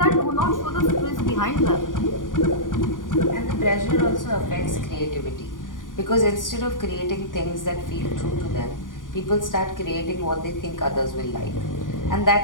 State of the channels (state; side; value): late; right; 0.89 ms